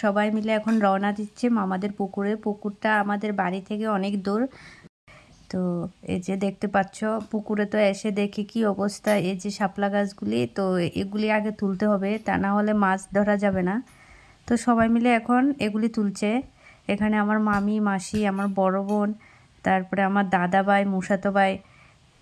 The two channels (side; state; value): both; identical; correlation 1.00